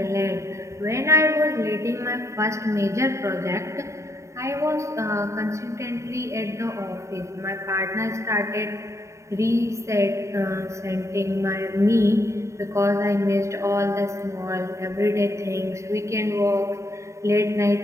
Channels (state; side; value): late; left; 0.14 ms